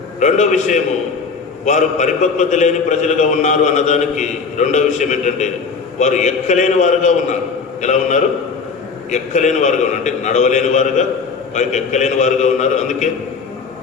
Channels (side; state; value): right; quieter; 5.1 dB